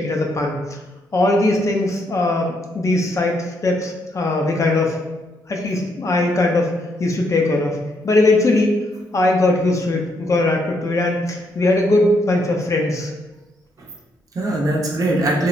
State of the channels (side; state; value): both; normal; correlation 0.75